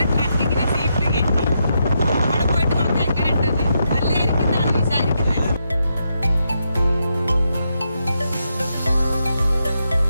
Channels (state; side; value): inverted; both; correlation -0.82